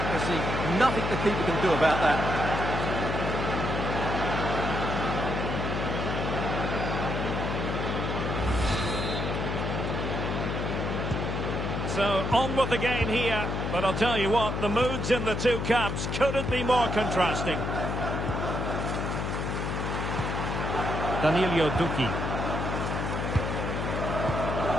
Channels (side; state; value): left; noise; hum, 2 dB below the sound